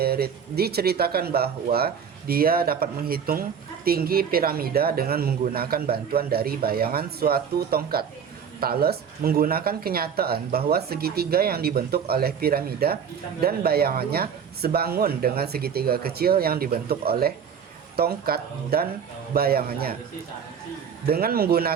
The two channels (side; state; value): left; quieter; 7.3 dB